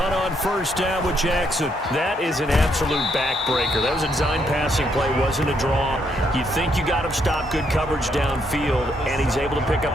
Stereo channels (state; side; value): normal; both; correlation 0.74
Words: on first down with Jackson. That is an absolute backbreaker. That was a design passing play, wasn't a draw. You think you got him stopped, good coverage downfield, and he's able to pick